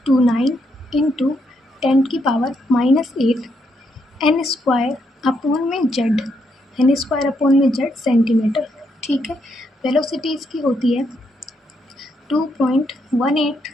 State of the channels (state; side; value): normal; both; correlation 0.77